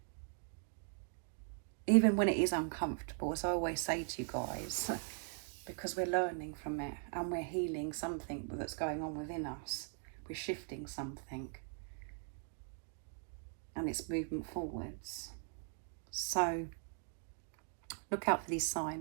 even when it is uncomfortable, as I always say to you guys, because we're learning from it and we're healing something that's going on within us. We're shifting something, and it's movement forwards. So look out for these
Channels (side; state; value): left; silent; 51 dB below the other